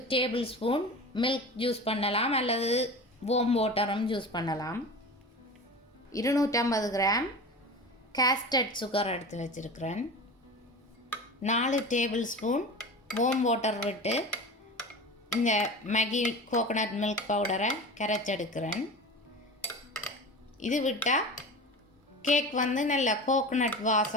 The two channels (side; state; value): both; normal; correlation 0.32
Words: டேபிள் ஸ்பூன் மில்க் யூஸ் பண்ணலாம், அல்லது வார்ம் வாட்டரும் யூஸ் பண்ணலாம். 250 கிராம் கேஸ்டர்ட் சுகர் எடுத்து வச்சுருக்கிறேன். 4 டேபிள் ஸ்பூன் வார்ம் வாட்டர் விட்டு இந்த மேகி கோகோனட் மில்க் பவுடரை கரைச்செடுக்கிறேன். இது விட்டால் கேக் நல்ல கோகோனட்